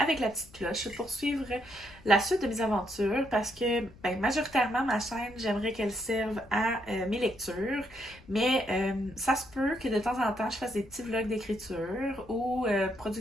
la petite cloche pour suivre la suite de mes aventures, parce que ben, majoritairement ma chaîne, j'aimerais qu'elle serve à mes lectures, mais ça se peut que de temps en temps je fasse des petits vlogs d'écriture ou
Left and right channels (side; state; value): left; noise; rumble, 23 dB below the sound